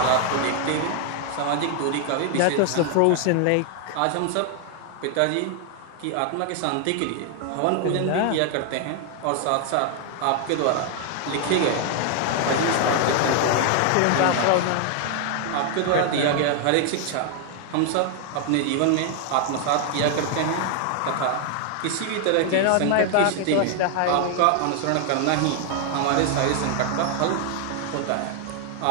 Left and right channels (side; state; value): both; different; correlation 0.00